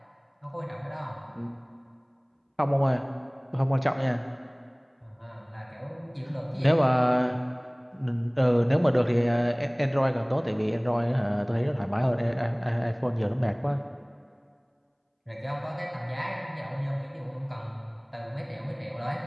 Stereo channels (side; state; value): both; identical; correlation 1.00